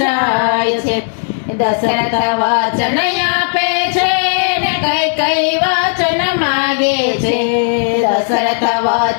જાય છે। દશરથ વચન આપે છે ને કઈ કઈ વચન માગે છે। દશરથ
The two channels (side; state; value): right; silent; digital silence